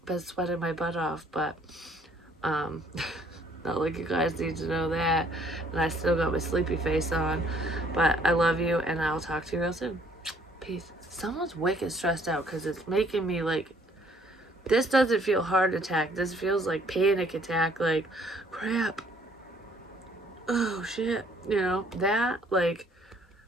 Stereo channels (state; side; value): normal; both; correlation 0.62